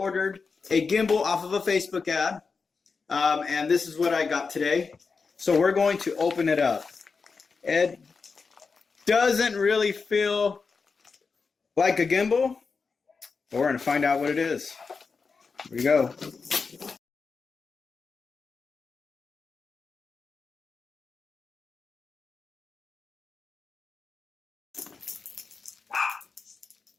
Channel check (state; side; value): quieter; right; 4.9 dB